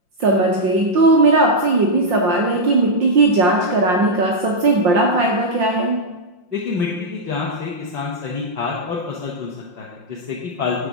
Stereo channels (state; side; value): late; left; 5.7 ms